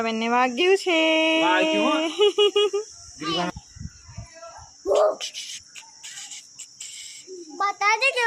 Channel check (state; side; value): identical; both; correlation 1.00